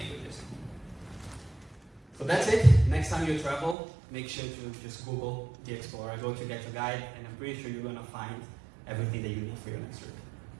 So that's it. Next time you travel, make sure to just Google the Explorer, go to GetYourGuide, and I'm pretty sure you're going to find everything that you need for your next trip.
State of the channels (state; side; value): drops out; left; at 3.8 s